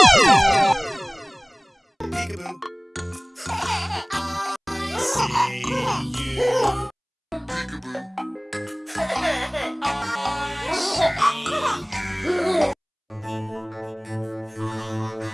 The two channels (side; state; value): both; identical; correlation 1.00